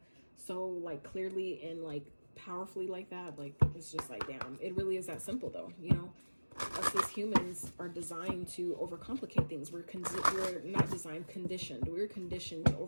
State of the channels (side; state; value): both; inverted; correlation -1.00